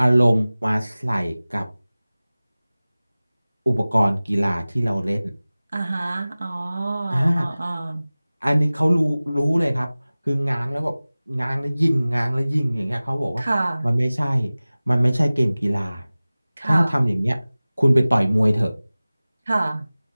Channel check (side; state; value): both; inverted; correlation -0.98